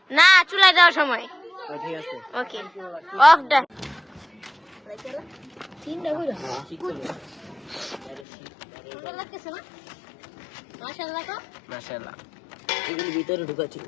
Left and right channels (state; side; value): drops out; right; at 8.2 s